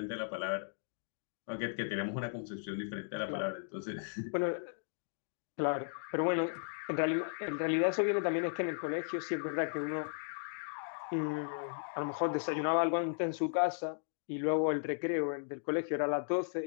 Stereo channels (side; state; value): right; silent; digital silence